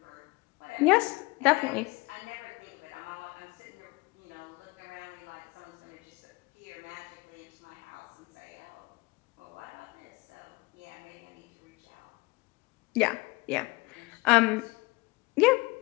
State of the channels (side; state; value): right; quieter; 24.0 dB